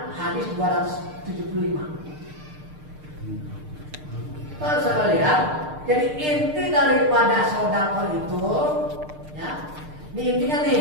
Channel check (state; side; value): late; left; 6.6 ms